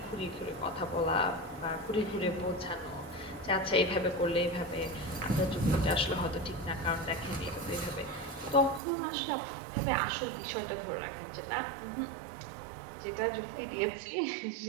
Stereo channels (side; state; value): left; drops out; at 8.8 s